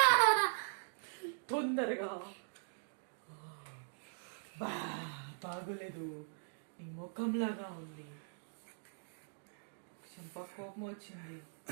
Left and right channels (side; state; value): left; silent; digital silence